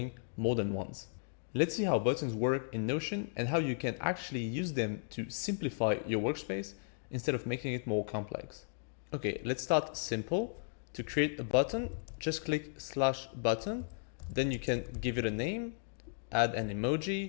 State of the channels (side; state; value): right; silent; digital silence